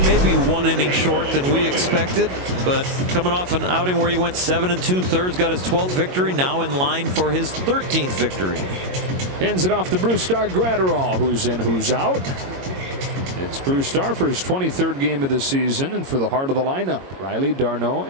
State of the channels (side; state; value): left; late; 22 ms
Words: Maybe 1 inning short than we expected, but coming off an outing where he went 7 2/3, got his 12th victory, now in line for his 13th victory. Hands it off to Brusdar Graterol, who's in, who's out. It's Brusdar for his 23rd game of the season, and for the heart of the lineup, Riley, d'Arnaud,